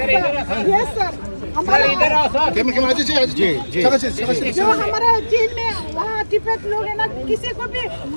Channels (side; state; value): both; inverted; correlation -1.00